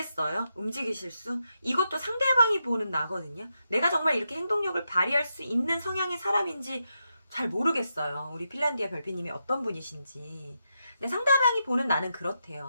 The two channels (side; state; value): both; inverted; correlation -0.85